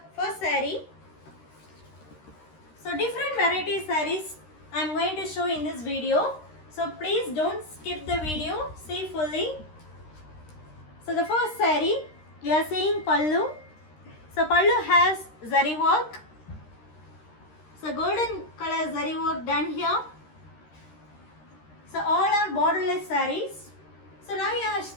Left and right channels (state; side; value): late; right; 13 ms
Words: first saree. So different variety sarees I am going to show in this video. So please don't skip the video, see fully. So the first saree, we are seeing pallu. So pallu has zari work. So golden color zari work done here. So all are borderless sarees. So now you are